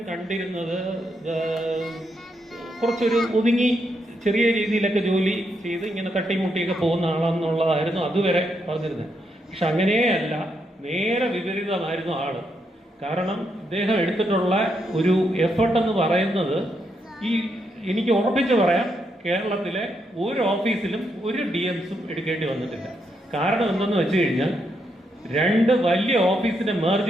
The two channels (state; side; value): normal; both; correlation 0.80